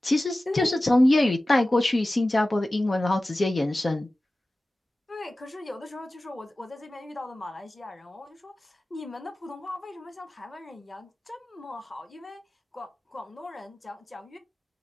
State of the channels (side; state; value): both; normal; correlation 0.96